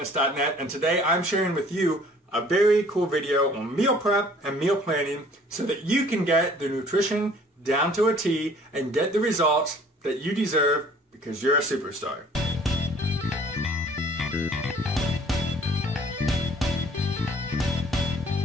and today I'm sharing with you a very cool video on meal prep and meal planning so that you can get the nutrition down to a T and get the results that you deserve because you're a superstar.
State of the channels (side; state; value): both; normal; correlation 0.54